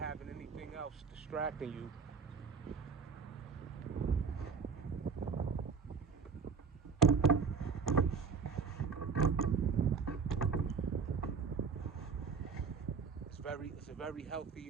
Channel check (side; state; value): left; quieter; 5.5 dB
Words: anything else distracting you. It's a very